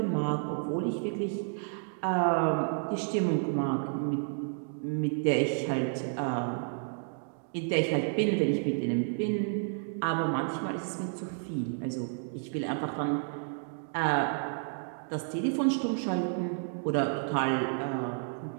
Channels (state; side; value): silent; left; digital silence